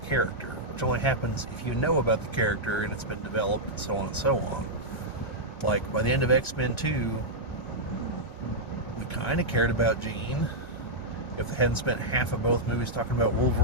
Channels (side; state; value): right; late; 1.4 ms